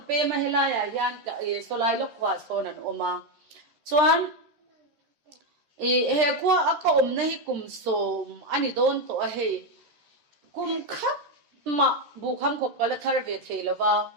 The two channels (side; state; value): left; late; 13 ms